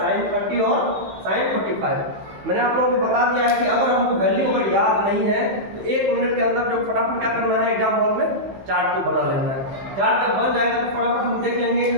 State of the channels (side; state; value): left; late; 15 ms